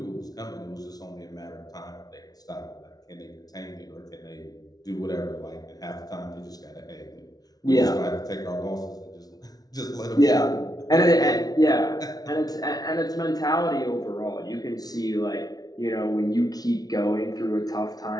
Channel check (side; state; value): right; late; 0.19 ms